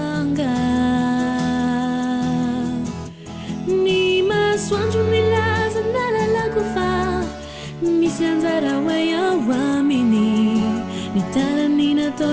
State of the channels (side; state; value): both; identical; correlation 1.00